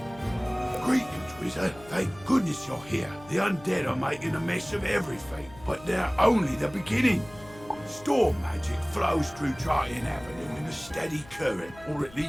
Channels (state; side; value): noise; left; hum, 21 dB below the sound